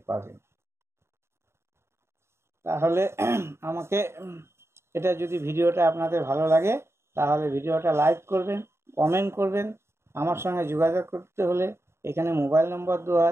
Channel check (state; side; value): late; left; 0.13 ms